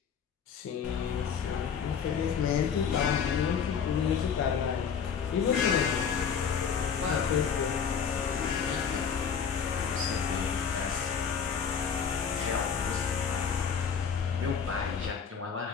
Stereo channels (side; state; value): right; quieter; 6.9 dB